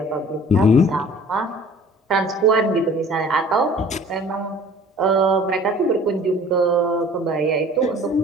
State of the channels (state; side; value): normal; both; correlation 0.49